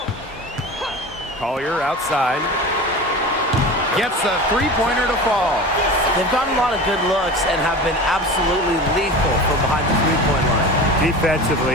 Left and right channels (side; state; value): both; normal; correlation 0.32